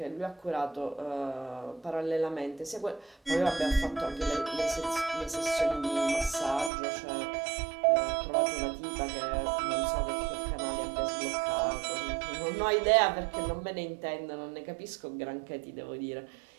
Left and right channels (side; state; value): left; drops out; at 6.7 s